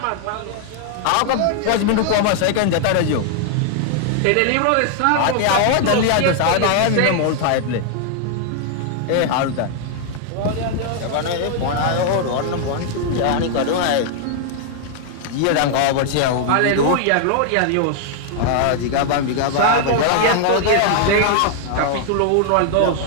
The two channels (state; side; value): different; both; correlation 0.00